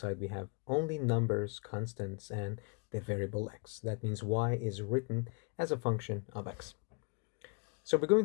we have only numbers, constants, and the variable x. That means y is written as a function of x. So we're going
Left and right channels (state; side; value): quieter; right; 33.7 dB